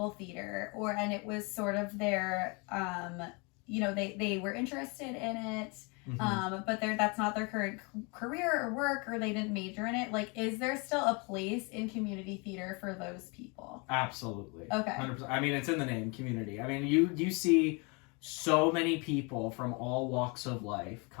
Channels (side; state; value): right; quieter; 30.9 dB